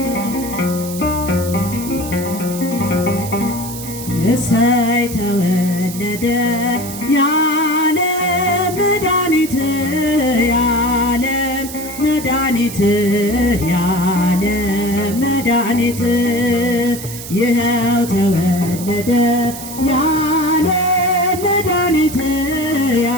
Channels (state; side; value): noise; right; hiss, 11 dB below the sound